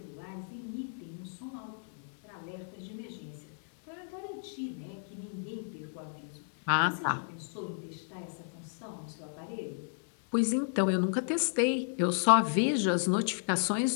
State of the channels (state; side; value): silent; right; 56 dB below the other